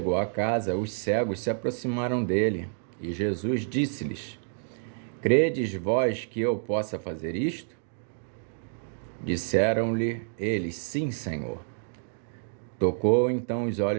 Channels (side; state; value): left; silent; digital silence